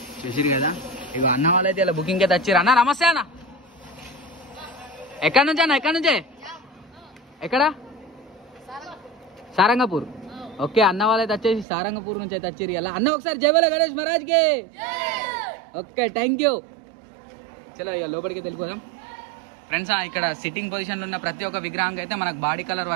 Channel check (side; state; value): left; drops out; at 11.7 s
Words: చూసిరు కదా. ఇవి అన్న వాళ్ళు అయితే ఇలా బుకింగ్ అయితే వచ్చారు. అన్న నమస్తే అన్న, ఎక్కడి నుంచి అన్న? ఎక్కడి నుంచే? ఎక్కడ? సారంగపూర్. ఓకే, అన్న వాళ్ళు అయితే వచ్చేసి సారంగపూర్ నుంచి అయితే వచ్చారు ఇలా. అన్న ఒకసారి జై బోలో గణేష్ మహారాజ్కి. Okay, thank you. చలో ఇక లోపలికి వెళ్ళిపోదాం ఫ్రెండ్స్. ఇక్కడ సిట్టింగ్ పొజిషన్లో ఉన్న ప్రతి ఒక్క విగ్రహంకి అయితే మనకు బాడీ కలర్